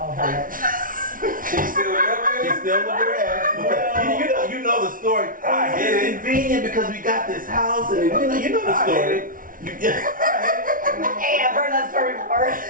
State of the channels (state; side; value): late; left; 0.39 ms